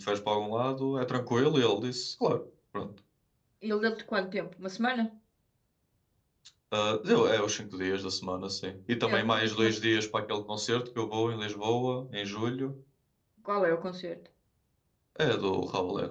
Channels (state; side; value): identical; both; correlation 1.00